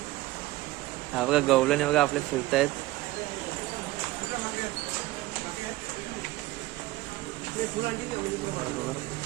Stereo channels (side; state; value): left; quieter; 18.4 dB